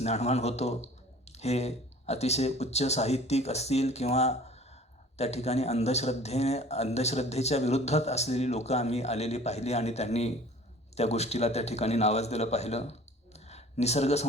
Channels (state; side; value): normal; both; correlation 0.47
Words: होतो. हे अतिशय उच्च साहित्यिक असतील किंवा त्या ठिकाणी अंधश्रद्धेच्या विरुद्धात असलेली लोकं आम्ही आलेली पाहिली आणि त्यांनी त्या गोष्टीला त्या ठिकाणी नावाजलेलं पाहिलं. निसर्ग